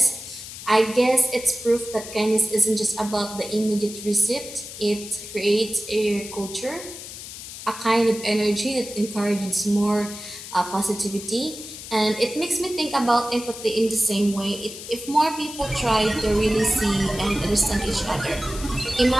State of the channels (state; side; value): noise; left; hiss, 12 dB below the sound